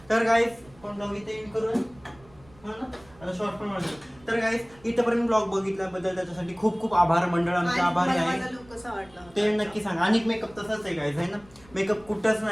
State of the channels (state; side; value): noise; right; rumble, 26 dB below the sound